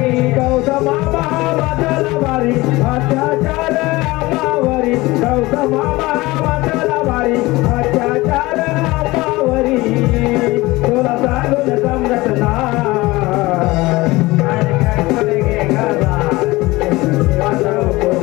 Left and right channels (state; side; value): quieter; right; 20.6 dB